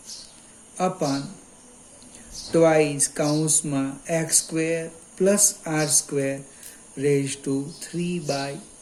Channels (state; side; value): identical; both; correlation 1.00